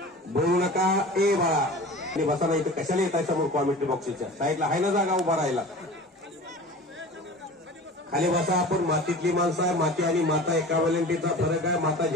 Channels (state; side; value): normal; both; correlation 0.38